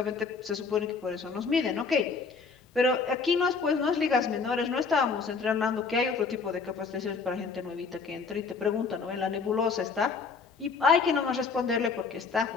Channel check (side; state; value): right; quieter; 4.9 dB